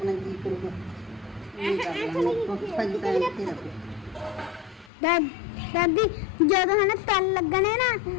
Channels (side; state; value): right; drops out; at 4.9 s